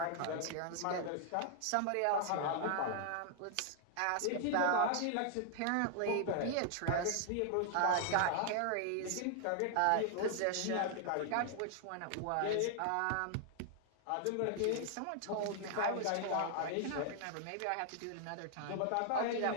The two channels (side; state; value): both; different; correlation 0.00